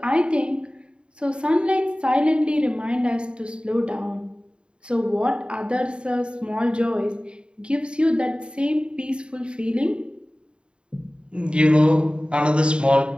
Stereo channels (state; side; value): late; left; 0.053 ms